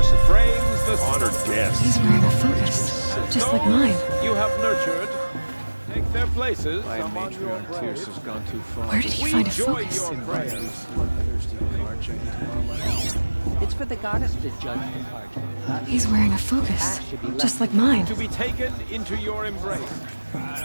frames the honored guests. He's wearing a focus, just like mine. You have nurtured. Take their places. My among your matriarch prayers. Tierce has gone too far. Where did he find a focus? Invite these bloodthirsty Karja into our lives. It's for the goddess to judge the Karja. He's wearing a focus, just like mine. To be taken into your embrace.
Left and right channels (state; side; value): inverted; both; correlation -1.00